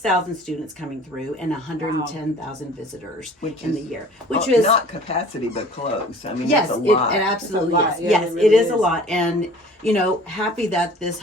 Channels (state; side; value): normal; both; correlation 0.48